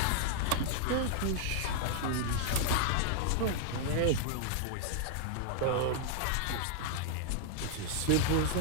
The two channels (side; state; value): both; different; correlation 0.00